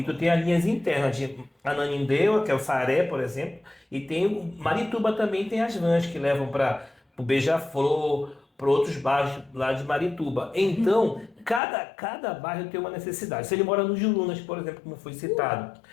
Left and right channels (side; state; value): right; drops out; at 11.6 s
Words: tu tem as linhas internas de Ananindeua, que é o Saaré, por exemplo, e tem o Marituba também, tem as vans que levam para o Beija-Flor, para outros bairros lá de Marituba. Então, cada bairro tem uma necessidade. Se ele mora no Jurunas, por exemplo, como foi citado.